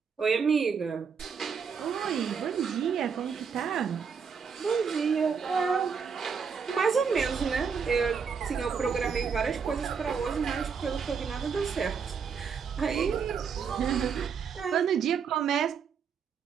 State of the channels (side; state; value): left; quieter; 6.3 dB